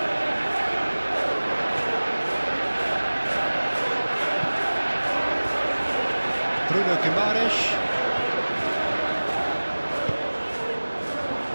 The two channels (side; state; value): both; inverted; correlation -1.00